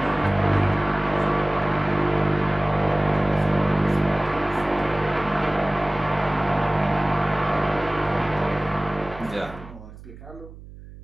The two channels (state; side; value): noise; right; hum, 17 dB below the sound